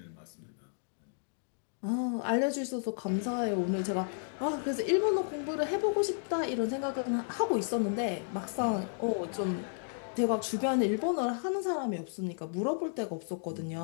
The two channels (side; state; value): right; silent; digital silence